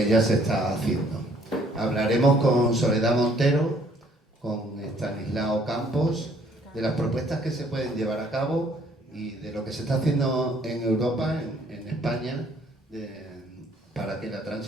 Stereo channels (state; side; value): normal; both; correlation 0.62